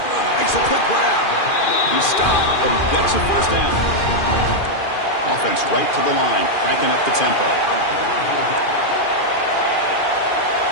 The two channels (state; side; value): late; right; 2.4 ms